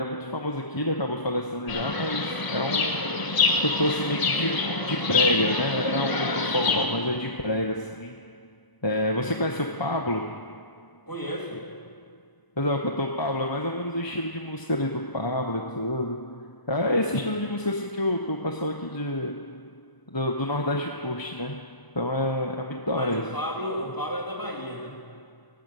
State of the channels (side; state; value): right; late; 1.0 ms